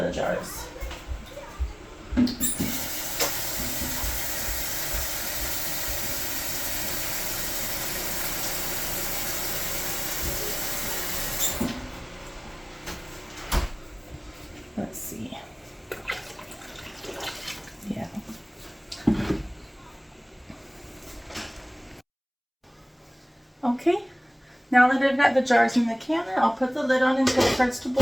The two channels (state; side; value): identical; both; correlation 1.00